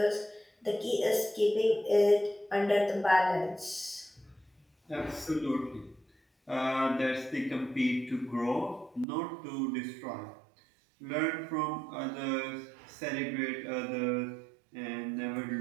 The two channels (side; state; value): left; drops out; at 9.1 s